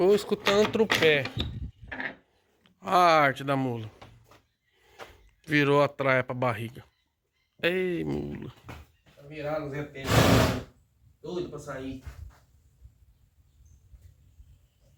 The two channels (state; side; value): identical; both; correlation 1.00